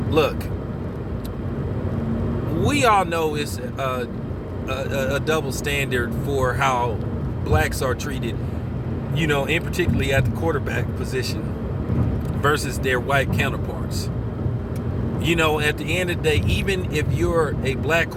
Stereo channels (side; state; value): both; identical; correlation 1.00